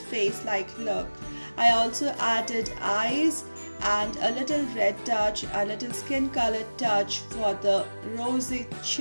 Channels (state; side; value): inverted; both; correlation -1.00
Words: look. I also added eyes and a little red touch, a little skin colored touch for the rosy